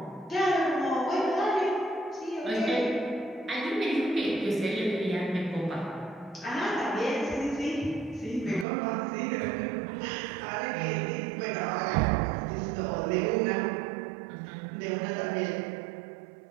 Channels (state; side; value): drops out; left; at 8.7 s